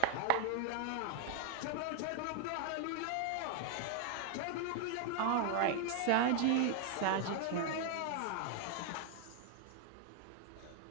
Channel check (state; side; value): different; both; correlation 0.00